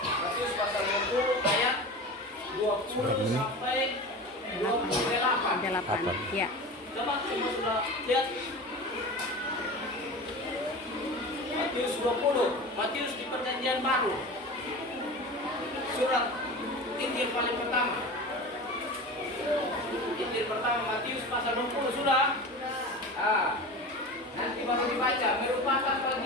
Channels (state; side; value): normal; both; correlation 0.32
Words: pasal 20 ayat 20 sampai 28. Ya. Coba semua sudah lihat Matius 20. Matius di Perjanjian Baru. Surat Injil paling pertama. Injil pertama Matius pasal 20 sudah. Nanti baru dibaca. Merupakan